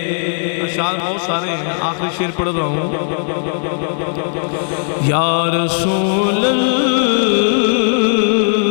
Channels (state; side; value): silent; right; 68 dB below the other